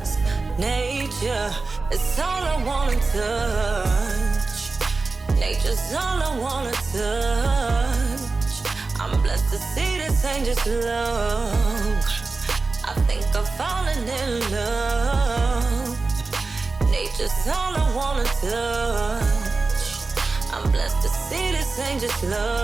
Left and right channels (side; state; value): left; quieter; 3.8 dB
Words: Nature is all I wanna touch. Nature's all I wanna touch. I'm blessed to see this ain't just love. I think I'm falling in love. Nature's all I wanna touch. I'm blessed to see this ain't just